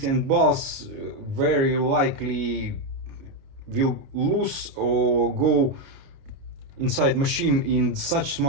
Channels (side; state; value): left; late; 29 ms